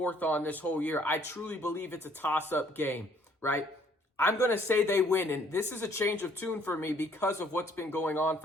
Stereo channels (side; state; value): both; normal; correlation 0.62